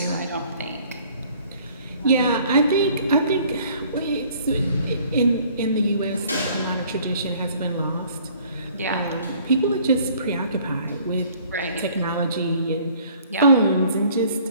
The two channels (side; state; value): both; inverted; correlation -0.56